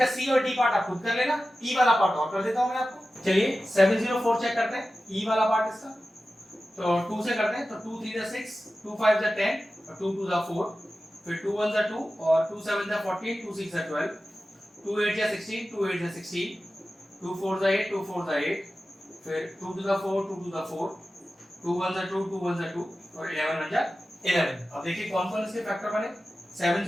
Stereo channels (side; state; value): both; normal; correlation 0.94